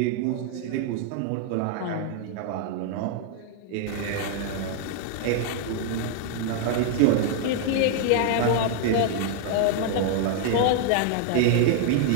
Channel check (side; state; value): both; different; correlation 0.00